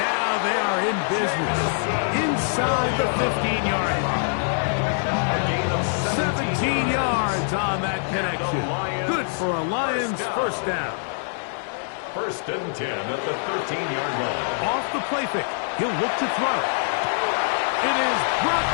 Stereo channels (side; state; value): right; silent; digital silence